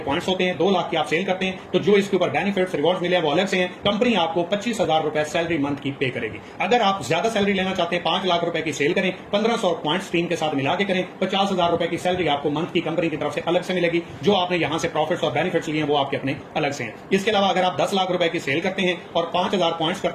होते हैं, 2 लाख की आप सेल करते हैं, तो जो इसके ऊपर बेनिफिट्स रिवॉर्ड मिले वो अलग से हैं। कंपनी आपको 25,000 रुपए सैलरी मंथ की पे करेगी। अगर आप ज्यादा सैलरी लेना चाहते हैं, 5 लाख रुपए की सेल करें, 1500 पॉइंट्स टीम के साथ मिला के करें, 50,000 रुपए की सैलरी आपको मंथ की कंपनी की तरफ से अलग से मिलेगी। जो आपने यहां से प्रॉफिट्स और बेनिफिट्स लिए हैं वो आपके अपने अलग से हैं। इसके अलावा अगर आप 10 लाख रुपए की सेल करते हैं और 5000 पॉइंट्स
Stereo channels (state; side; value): identical; both; correlation 1.00